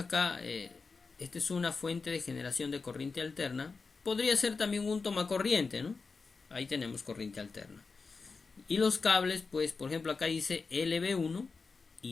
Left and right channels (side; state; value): right; quieter; 4.5 dB